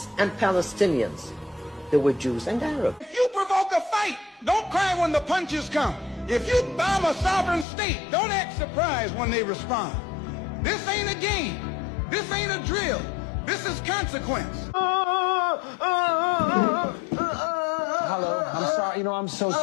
and Palestinians. There were Jews and Arabs. If you provoke a fight, don't cry when the punches come. If you bomb a sovereign state, don't act surprised when they respond. This ain't a game. This ain't a drill. This is consequence. Hello, I'm sorry. I'm so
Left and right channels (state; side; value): drops out; right; at 7.7 s